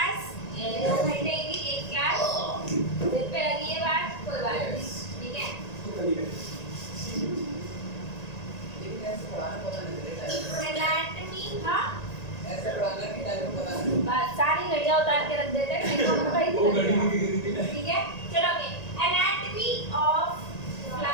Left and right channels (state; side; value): late; right; 1.9 ms